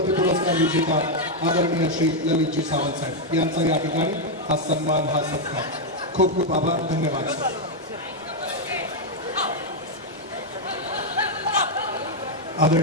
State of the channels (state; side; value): normal; both; correlation 0.00